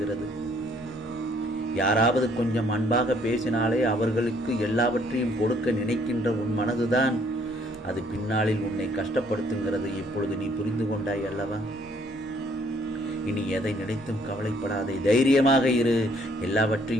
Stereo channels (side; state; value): both; normal; correlation 0.64